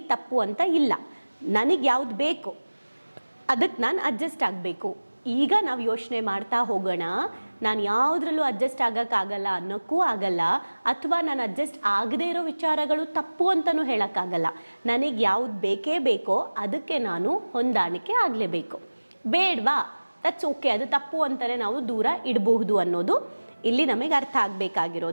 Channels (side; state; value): both; inverted; correlation -1.00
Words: ತಪ್ಪು ಅಂತ ಇಲ್ಲ, ನನಗೆ ಯಾವುದು ಬೇಕು ಅದಕ್ಕೆ ನಾನು ಅಡ್ಜಸ್ಟ್ ಆಗಬೇಕು. ಈಗ ನಾವು ಯೋಚನೆ ಮಾಡ್ತಾ ಹೋಗೋಣ, ನಾನು ಯಾವುದ್ರಲ್ಲೂ ಅಡ್ಜಸ್ಟ್ ಆಗೋಕ್ಕಾಗಲ್ಲ ಅನ್ನೋಕ್ಕೂ ಆಗಲ್ಲ, ಅಥವಾ ನಾನು ಅಡ್ಜಸ್ಟ್ ಆಗದೇ ಇರೋ ವಿಚಾರಗಳು ತಪ್ಪು ಅಂತಲೂ ಹೇಳೋಕ್ಕಾಗಲ್ಲ. ನನಗೆ ಯಾವುದು ಬೇಕೇ ಬೇಕೋ ಅದಕ್ಕೆ ನಾನು ಹೊಂದಾಣಿಕೆ ಆಗಲೇಬೇಕು. ಬೇಡವಾ, ದಟ್ಸ್ ಓಕೆ, ಅದು ತಪ್ಪು ಅಂತಲೇ ನಾವು ದೂರ ಇಡಬಹುದು ಅನ್ನೋದು ಇಲ್ಲಿ ನಮಗೆ ಅರ್ಥ